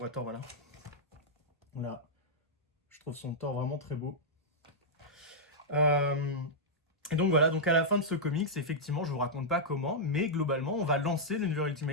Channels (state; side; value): normal; both; correlation -0.08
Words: Thor, voilà. Voilà. Je trouve son Thor vraiment très beau. Et donc voilà, donc à la fin de ce comics, effectivement, je vous raconte pas comment, mais globalement, on va lancer le